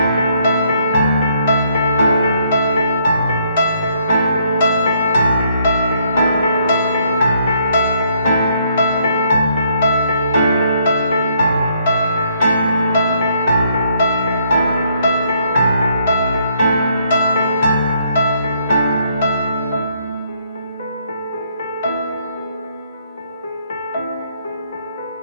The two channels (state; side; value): inverted; both; correlation -0.69